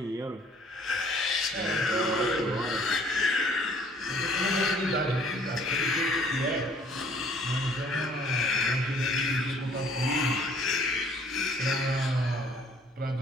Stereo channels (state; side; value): normal; both; correlation 0.58